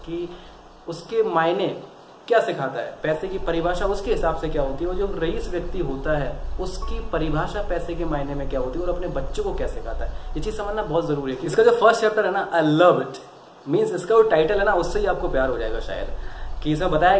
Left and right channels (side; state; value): both; identical; correlation 1.00